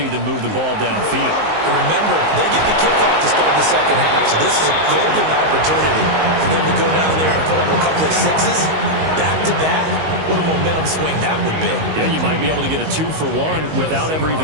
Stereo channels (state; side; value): late; left; 19 ms